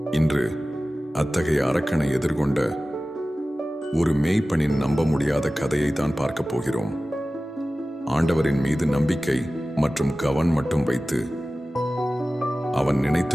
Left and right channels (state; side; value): normal; both; correlation 0.96